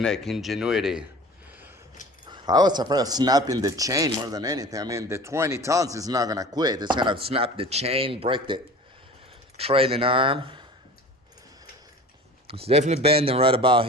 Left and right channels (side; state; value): both; normal; correlation 0.41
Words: ingenuity. I was afraid of snapping the chain more than anything. I mean, the 20 tons is not gonna quit. It's gonna snap the chain, break the trailing arm. It's definitely bending right about